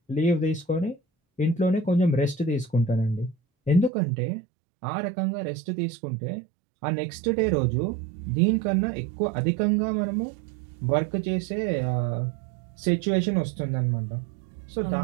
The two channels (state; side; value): drops out; left; at 3.9 s